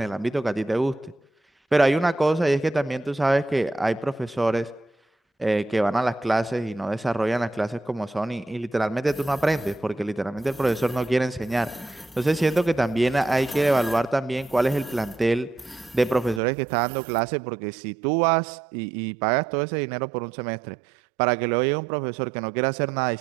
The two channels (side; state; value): left; drops out; at 16.4 s